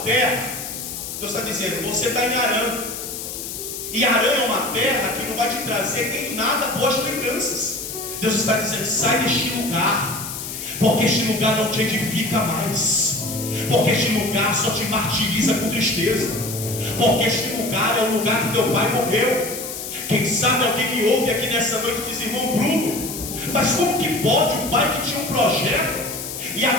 terra, Deus está dizendo você está em Harã. E Harã é uma terra que não vai te trazer em nada boas lembranças. Deus está dizendo sai deste lugar, porque este lugar não te edifica mais, porque este lugar só te martiriza com tristeza, porque este lugar é o lugar que teu pai morreu. Quem sabe alguém me ouve aqui nessa noite e diz: irmão Bruno, mas como que pode um pai que tinha um projeto, e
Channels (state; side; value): noise; left; hiss, 7 dB below the sound